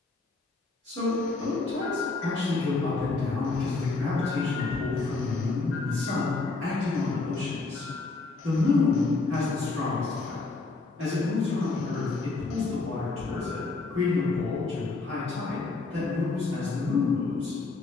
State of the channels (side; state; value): right; quieter; 3.7 dB